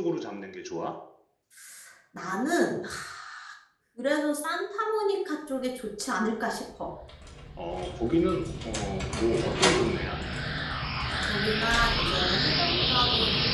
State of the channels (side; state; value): both; identical; correlation 1.00